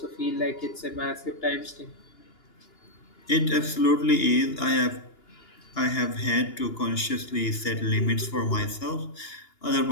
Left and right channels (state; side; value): late; right; 2.9 ms